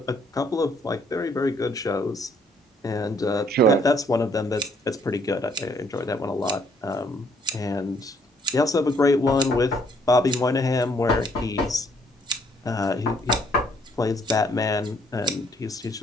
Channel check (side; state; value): both; normal; correlation 0.66